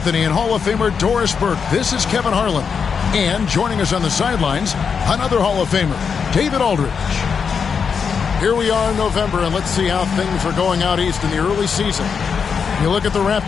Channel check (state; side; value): quieter; right; 6.2 dB